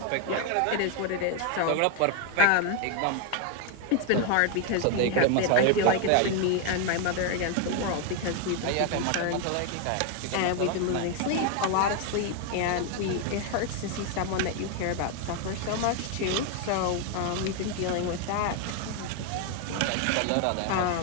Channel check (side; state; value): both; different; correlation 0.01